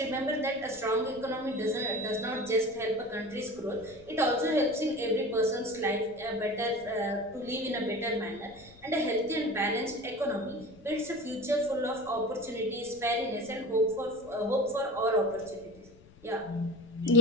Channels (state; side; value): noise; left; rumble, 24 dB below the sound